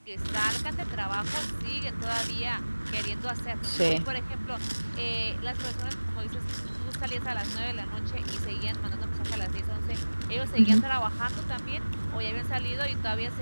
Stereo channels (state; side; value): inverted; both; correlation -1.00